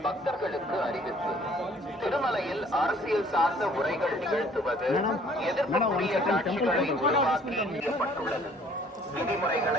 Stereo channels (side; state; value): both; normal; correlation 0.57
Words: பக்தர்களுக்கு அறிவிப்பு. திருமலையில் அரசியல் சார்ந்த உரைகள் நிகழ்த்துவது எதிர்ப்புக்குரிய காட்சிகளை உருவாக்கி செய்யப்பட்டுள்ளது.